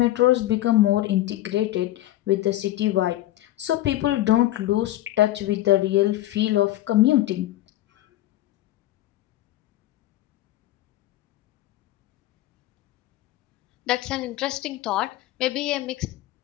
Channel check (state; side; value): quieter; right; 15.1 dB